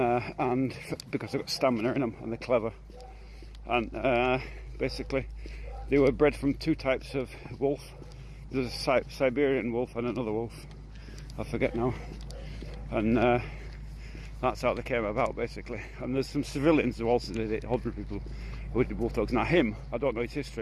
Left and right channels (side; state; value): both; identical; correlation 1.00